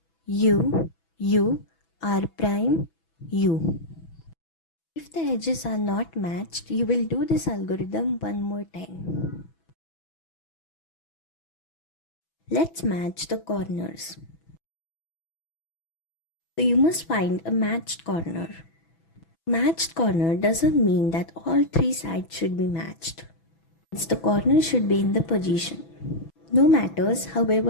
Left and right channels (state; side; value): late; right; 6.1 ms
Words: U, U, R prime, U. If the edges are not matched, you will do this algorithm one more time. Let's match the corners. So you must find a matched corner. Matched corner doesn't mean that all three sides should be matched. The corner should be in the position. No matters,